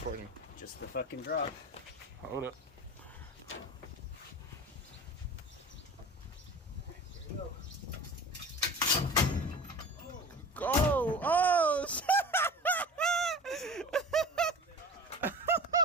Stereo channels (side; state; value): both; normal; correlation 0.37